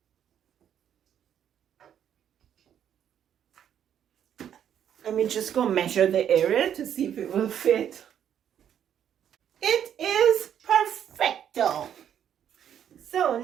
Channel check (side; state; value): left; quieter; 9.4 dB